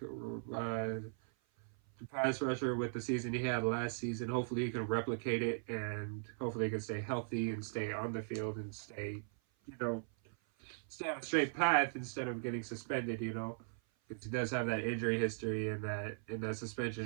pass rusher with the season he had last season. Hopefully he can replicate it, and hopefully he can stay healthy and stay on the field and stay on a straight path instead of getting suspended. Because he does have that injury history and that suspension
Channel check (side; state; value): left; silent; 52 dB below the other